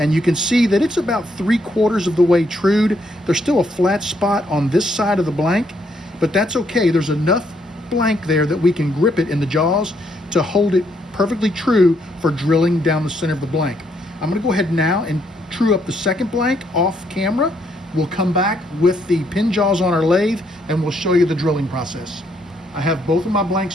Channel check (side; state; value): both; normal; correlation 0.73